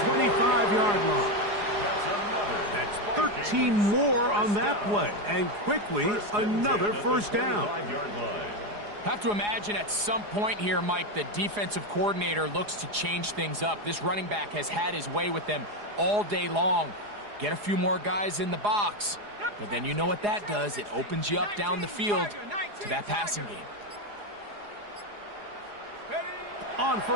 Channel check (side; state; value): left; late; 4.8 ms